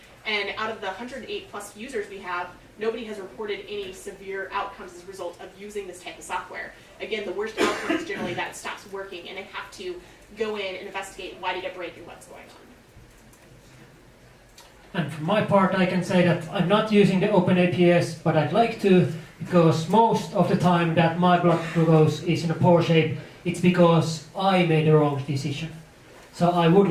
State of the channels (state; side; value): identical; both; correlation 1.00